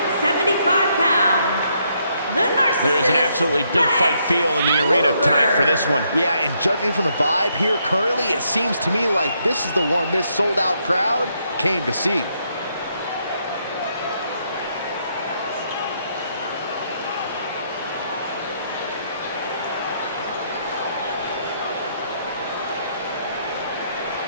pounds, the narcissist. There is an absolutely big fight feel in the arena tonight for this one. Yeah, and judging from the vibe here currently, it seems to me like this is the one this sold-out crowd came to see.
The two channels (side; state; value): both; inverted; correlation -0.74